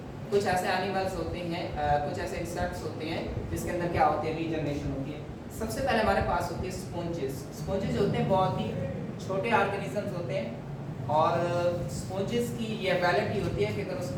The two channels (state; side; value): identical; both; correlation 1.00